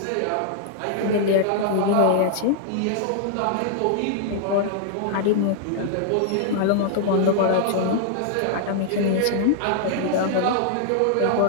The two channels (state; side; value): different; both; correlation -0.01